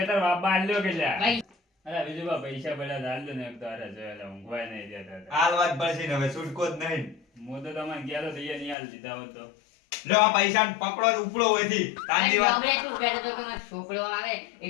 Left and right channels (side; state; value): right; drops out; at 8.8 s